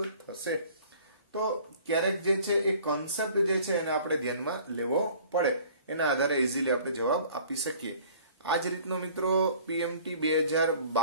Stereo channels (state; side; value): inverted; both; correlation -0.50